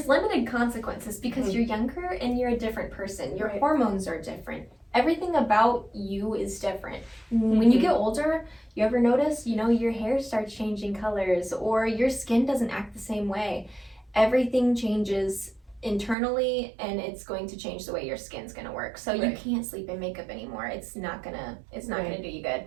limited consequences because you're younger and you're a different person. Your Right. hormones are different. Everything about you is different. When you get older, you ever notice, your hair starts changing colors or your skin doesn't act the same way. Everything changes internally and it's going to change the way your skin's going to work. So you Right. can't sleep in makeup anymore. It's not going to Right. do you good.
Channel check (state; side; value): drops out; left; at 16.2 s